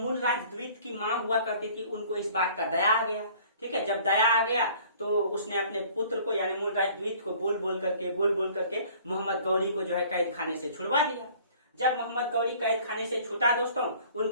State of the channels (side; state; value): both; inverted; correlation -0.52